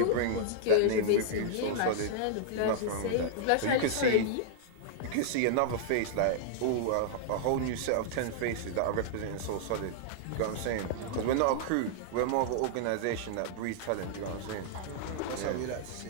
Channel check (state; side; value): different; both; correlation -0.01